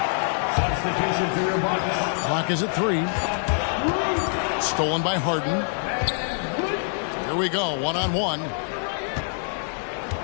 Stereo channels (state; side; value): silent; right; 62 dB below the other